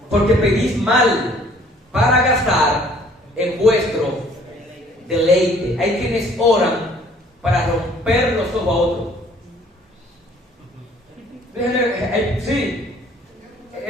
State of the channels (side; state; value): both; normal; correlation 0.57